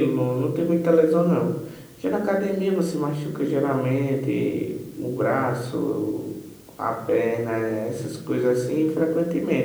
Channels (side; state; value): both; identical; correlation 1.00